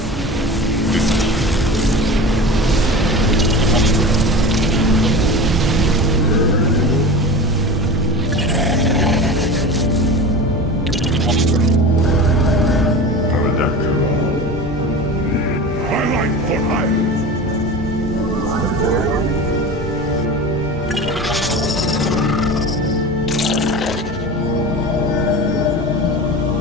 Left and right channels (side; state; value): both; normal; correlation 0.32